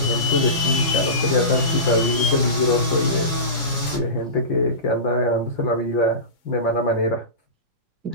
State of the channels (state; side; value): late; right; 4.3 ms